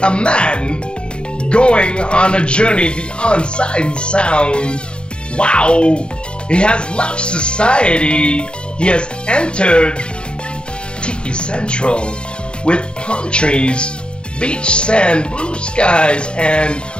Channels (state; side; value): late; right; 0.054 ms